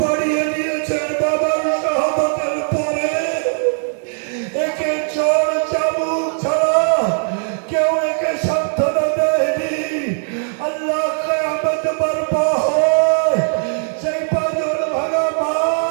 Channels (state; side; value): silent; left; digital silence